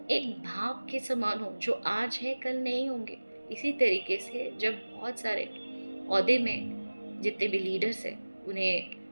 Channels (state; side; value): inverted; both; correlation -1.00